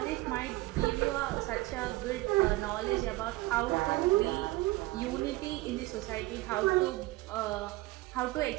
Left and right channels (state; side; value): quieter; left; 19.4 dB